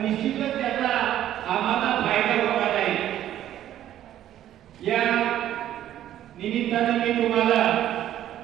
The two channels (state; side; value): quieter; left; 12.0 dB